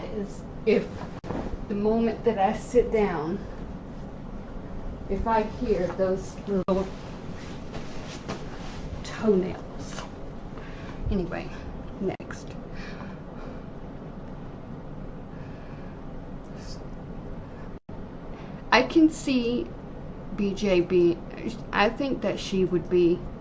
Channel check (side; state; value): both; identical; correlation 1.00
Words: as if the moment that I sit down, if I hear those little toenails. Anyway, next. I can see BJ I think that she would be